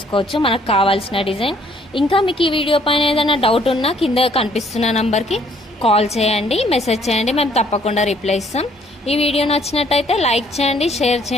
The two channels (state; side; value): normal; both; correlation 0.63